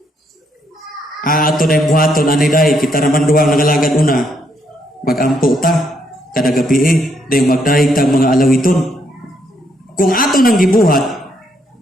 Ato na yung buhaton, aniday, kita naman duwang nangalagad una. Magampo ta, kada gabi dahil magdahig tag mga alawiton. Kung ato nang gibuhat,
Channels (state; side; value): normal; both; correlation 0.74